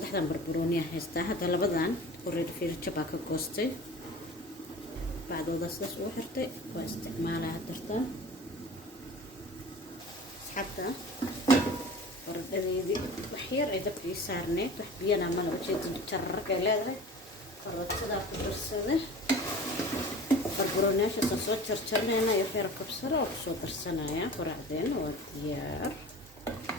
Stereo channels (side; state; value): both; normal; correlation 0.39